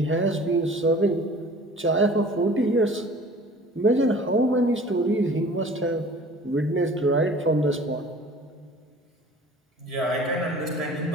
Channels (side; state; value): both; normal; correlation 0.46